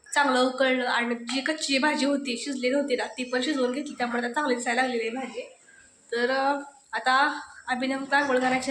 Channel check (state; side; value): identical; both; correlation 1.00